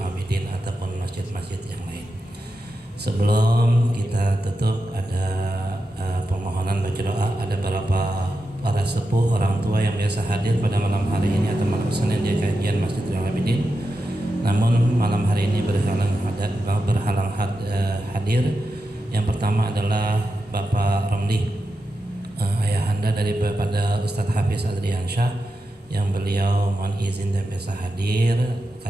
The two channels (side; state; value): both; normal; correlation 0.89